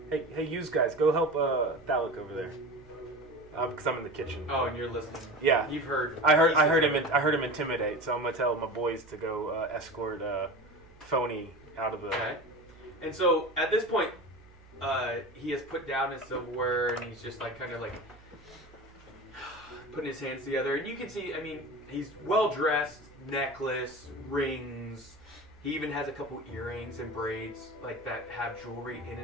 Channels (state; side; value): normal; both; correlation 0.31